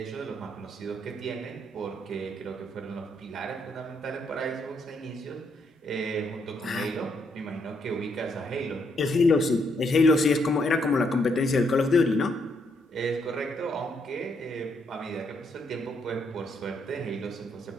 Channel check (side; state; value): both; normal; correlation 0.75